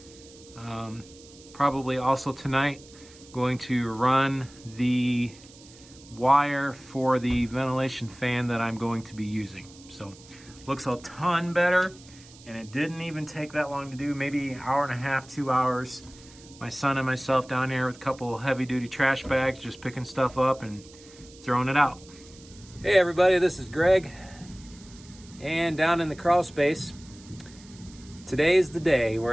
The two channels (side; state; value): right; noise; hiss, 22 dB below the sound